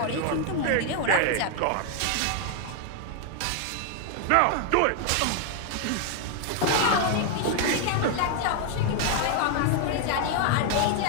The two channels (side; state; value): both; different; correlation 0.00